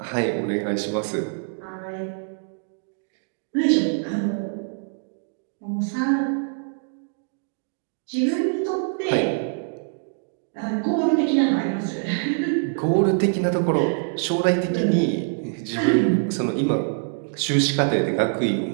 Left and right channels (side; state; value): left; silent; digital silence